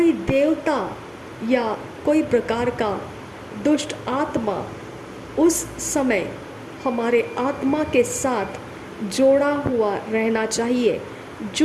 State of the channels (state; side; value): identical; both; correlation 1.00